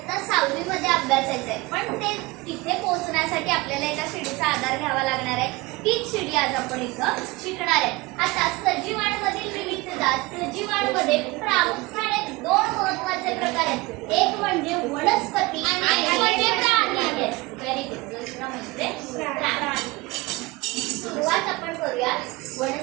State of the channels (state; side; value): quieter; left; 22.7 dB